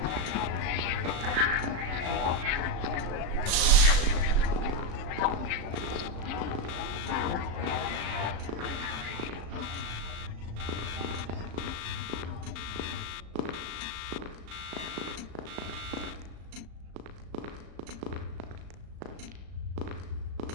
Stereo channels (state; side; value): late; left; 36 ms